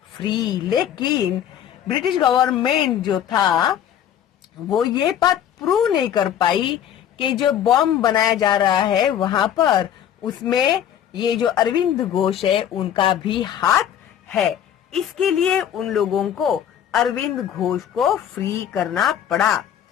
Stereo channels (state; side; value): quieter; right; 9.9 dB